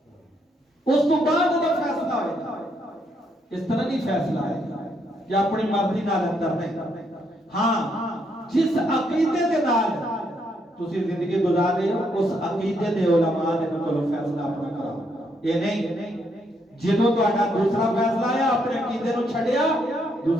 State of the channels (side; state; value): both; normal; correlation 0.75